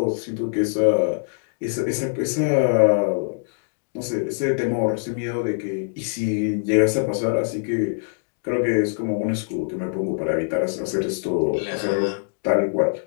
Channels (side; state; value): right; silent; digital silence